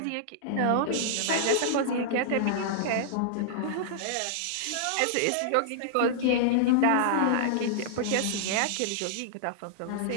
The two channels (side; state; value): both; different; correlation -0.01